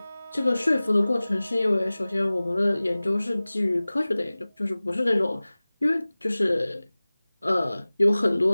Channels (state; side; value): inverted; both; correlation -0.99